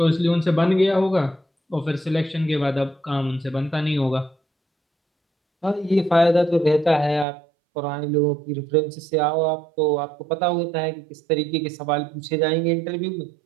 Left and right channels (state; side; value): drops out; left; at 7.2 s